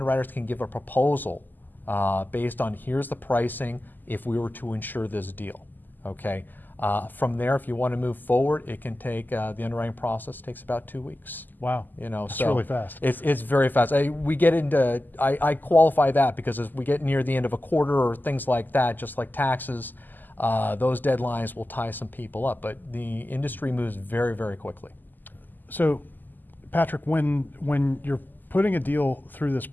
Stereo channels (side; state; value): right; late; 0.087 ms